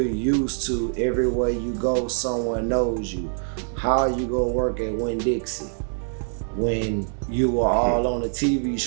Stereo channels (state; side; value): silent; left; 59 dB below the other